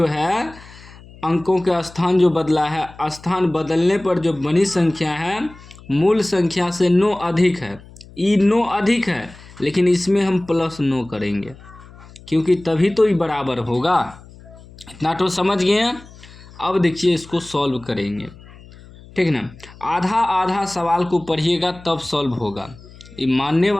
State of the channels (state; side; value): noise; left; hum, 21 dB below the sound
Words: है अंकों के स्थान जो बदला है, स्थान बदलने पर जो बनी संख्या है मूल संख्या से 9 अधिक है। ये 9 अधिक है लेकिन इसमें हम +9 करेंगे क्योंकि तभी तो ये बराबर होगा। इतना तो समझ गए हैं। अब देखिए इसको सॉल्व करेंगे, ठीक ना। आधा आधा सवाल को पढ़िएगा तब सॉल्व होगा। ये मानने